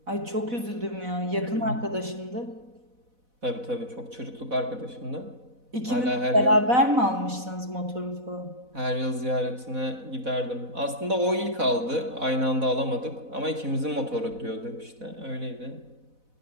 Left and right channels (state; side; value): late; left; 4.0 ms